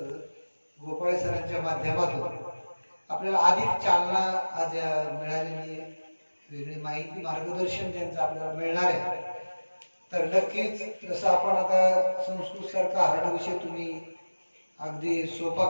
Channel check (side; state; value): both; inverted; correlation -1.00